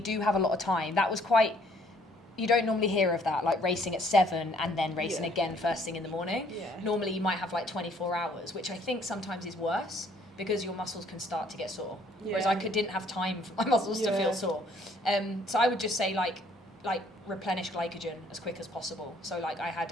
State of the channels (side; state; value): both; normal; correlation 0.62